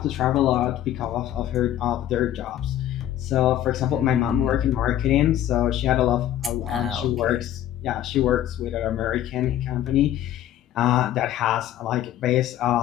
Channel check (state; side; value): quieter; right; 12.1 dB